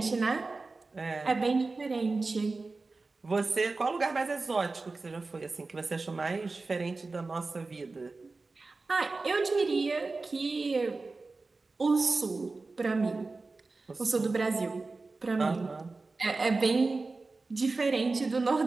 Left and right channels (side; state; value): left; quieter; 3.7 dB